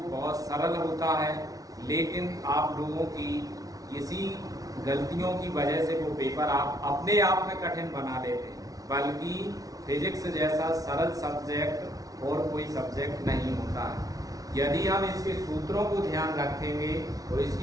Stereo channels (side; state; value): left; late; 0.18 ms